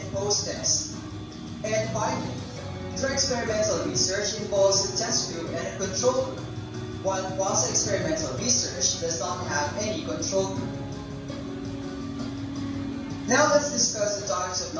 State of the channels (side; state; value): both; identical; correlation 1.00